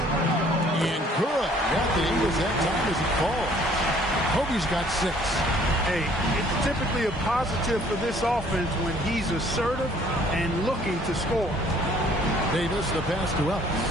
and good. Nothing was that time as it falls. Kobe's got 6. Hey, it's typically a positive for this offense when he's assertive and looking to score. Davis, the pass to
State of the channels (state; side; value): normal; both; correlation 0.58